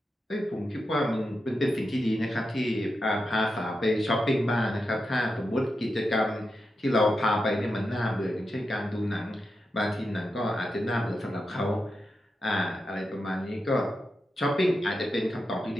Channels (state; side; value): normal; both; correlation 0.88